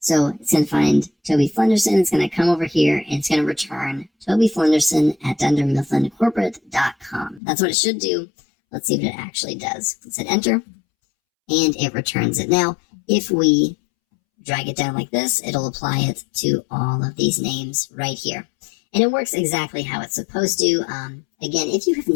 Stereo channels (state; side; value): drops out; right; at 7.4 s